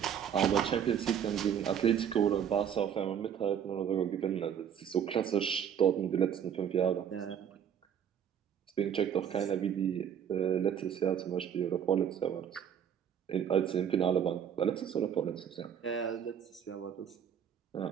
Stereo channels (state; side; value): quieter; left; 8.6 dB